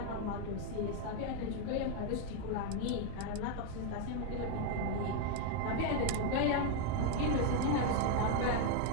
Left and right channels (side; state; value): both; different; correlation 0.01